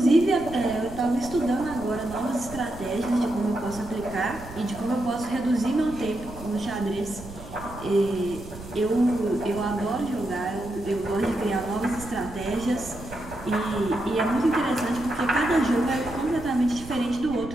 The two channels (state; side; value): noise; right; rumble, 14 dB below the sound